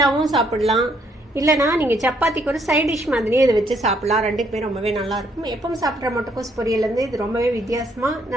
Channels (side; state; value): both; normal; correlation 0.70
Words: சாப்பிடலாம், இல்லைனா நீங்க சப்பாத்திக்கு ஒரு சைட் டிஷ் மாதிரியே இதை வச்சு சாப்பிடலாம். ரெண்டுக்குமே ரொம்பவே நல்லா இருக்கும். எப்பவும் சாப்பிட்ற முட்டைக்கோஸ் பொரியல் வந்து இது ரொம்பவே வித்தியாசமா